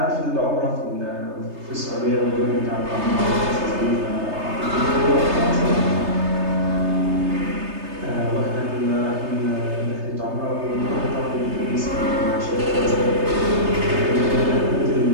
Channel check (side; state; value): left; late; 3.3 ms